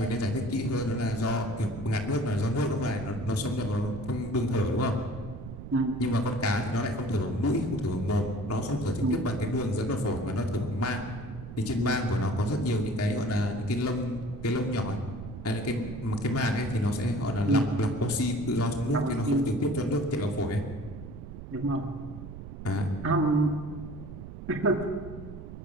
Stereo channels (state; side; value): noise; right; rumble, 11 dB below the sound